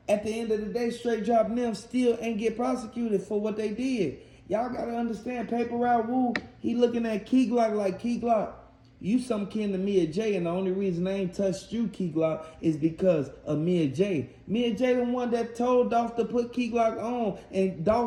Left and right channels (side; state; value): both; identical; correlation 1.00